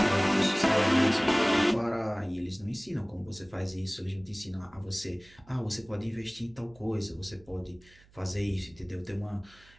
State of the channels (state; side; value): noise; right; hum, 27 dB below the sound